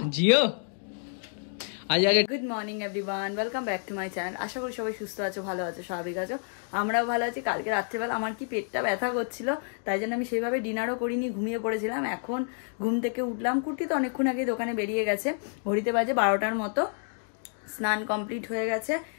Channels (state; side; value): silent; right; 57 dB below the other